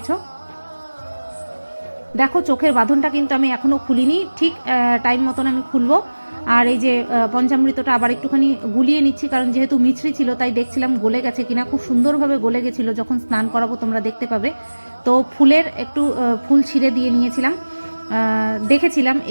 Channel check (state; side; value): inverted; both; correlation -1.00